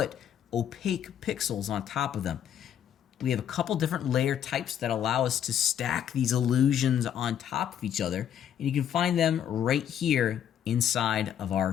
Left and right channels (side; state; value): right; quieter; 9.7 dB